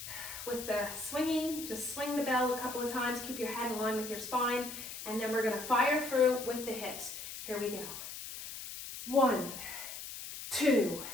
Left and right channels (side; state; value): left; noise; hiss, 9 dB below the sound